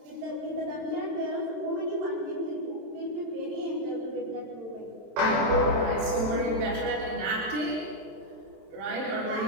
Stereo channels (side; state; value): left; late; 27 ms